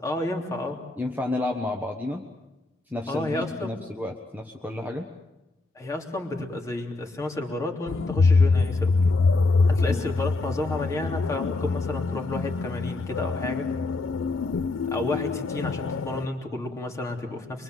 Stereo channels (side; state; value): right; quieter; 3.1 dB